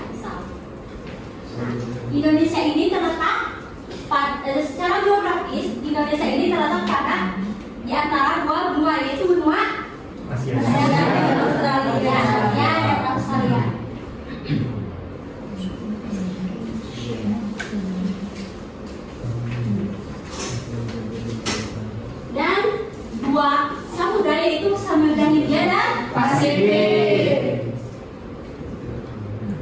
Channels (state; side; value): identical; both; correlation 1.00